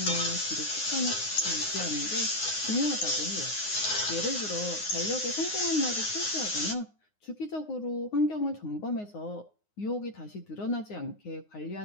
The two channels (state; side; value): late; right; 9.6 ms